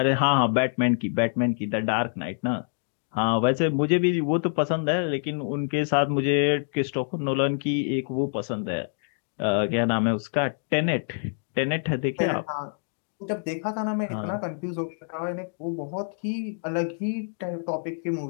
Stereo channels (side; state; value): right; silent; digital silence